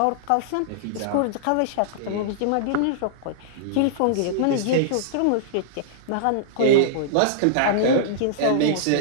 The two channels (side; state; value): both; different; correlation -0.01